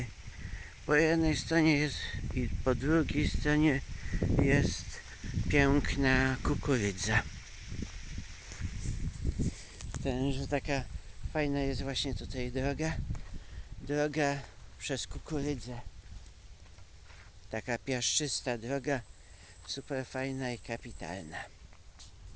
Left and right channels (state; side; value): identical; both; correlation 1.00